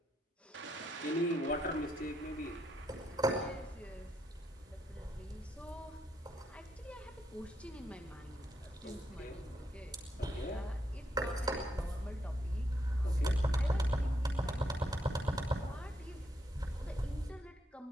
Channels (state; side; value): normal; both; correlation 0.77